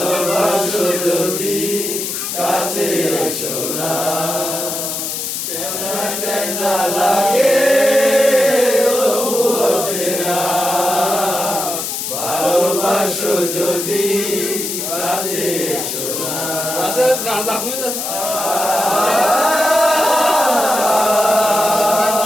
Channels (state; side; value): noise; left; hiss, 4 dB below the sound